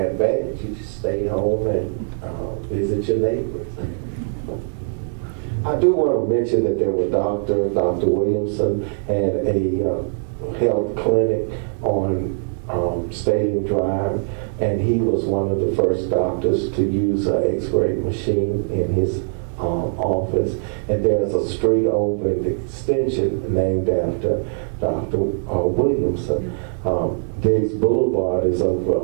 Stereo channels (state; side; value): silent; left; digital silence